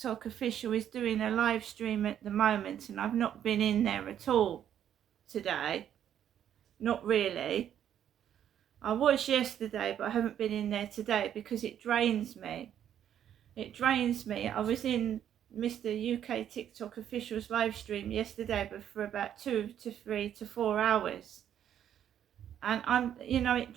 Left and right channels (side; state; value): left; quieter; 10.0 dB